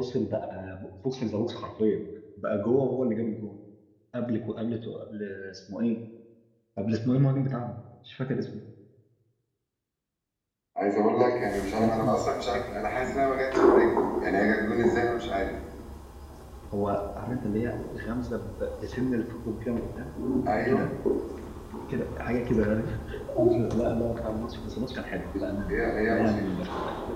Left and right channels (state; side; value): identical; both; correlation 1.00